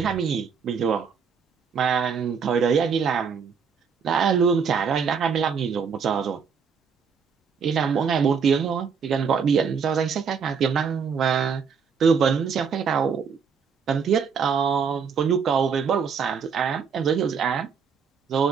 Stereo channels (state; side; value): quieter; left; 6.3 dB